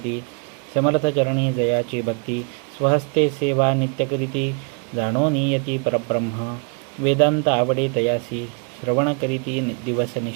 समर्थ चरणी जयाची भक्ती. स्वहस्ते सेवा नित्यकरिती, जाणो नियती परब्रह्म. वेदांत आवडे तयासी, श्रवण करीती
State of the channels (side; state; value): left; quieter; 37.8 dB